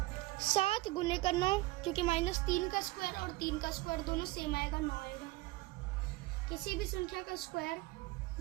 7 गुने का 9, क्योंकि -3 का स्क्वायर और 3 का स्क्वायर दोनों सेम आएगा, 9 आएगा। किसी भी संख्या का स्क्वायर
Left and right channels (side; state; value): left; quieter; 20.4 dB